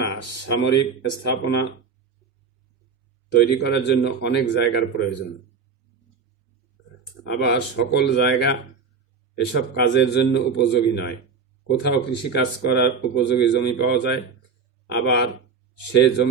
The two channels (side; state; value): left; quieter; 5.7 dB